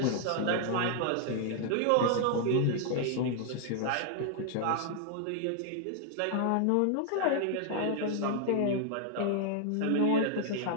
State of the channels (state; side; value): different; both; correlation 0.00